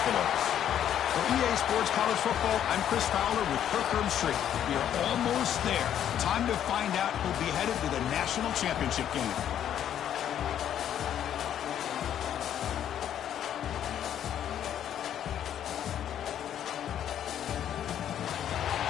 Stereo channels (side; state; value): right; quieter; 10.2 dB